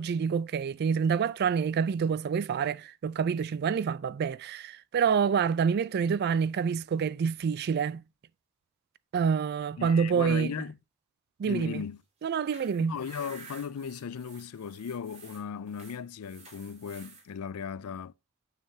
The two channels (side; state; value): left; quieter; 5.1 dB